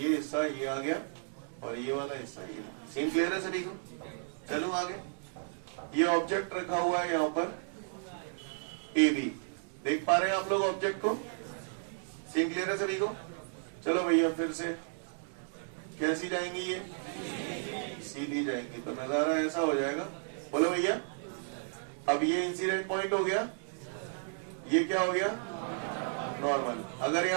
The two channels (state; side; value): silent; left; 55 dB below the other